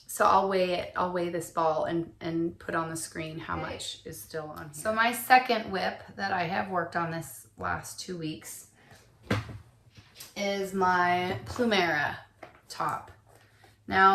So I'll weigh it. I'll weigh this ball and put on the screen how much is still on here. So my second whip that I have worked on this last 2 weeks is my Plumera top.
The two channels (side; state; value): both; identical; correlation 1.00